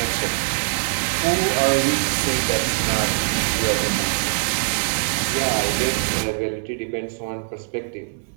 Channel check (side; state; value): left; silent; digital silence